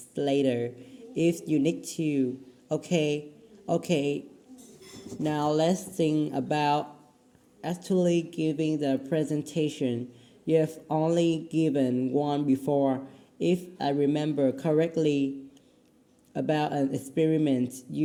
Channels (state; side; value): identical; both; correlation 1.00